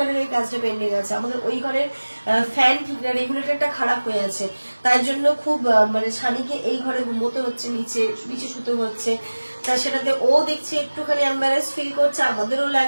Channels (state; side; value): inverted; both; correlation -1.00